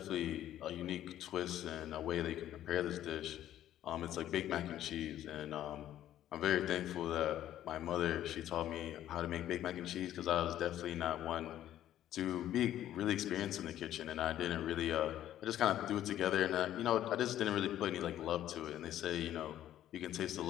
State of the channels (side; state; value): right; quieter; 12.2 dB